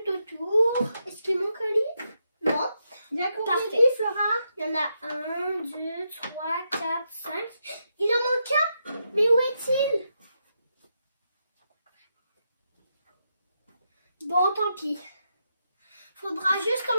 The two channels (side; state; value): both; inverted; correlation -0.83